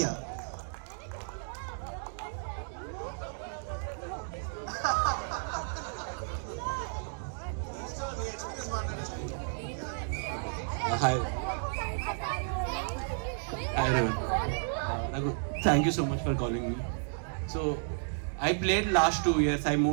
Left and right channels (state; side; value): silent; left; digital silence